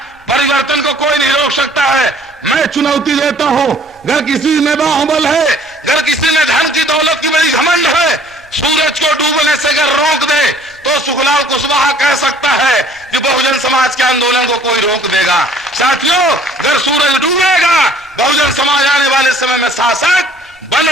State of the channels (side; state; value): both; normal; correlation 0.55